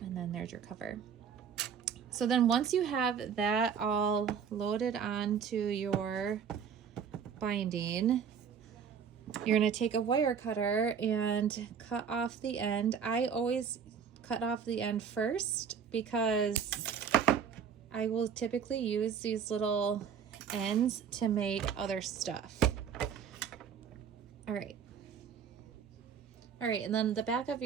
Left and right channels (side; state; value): left; quieter; 7.2 dB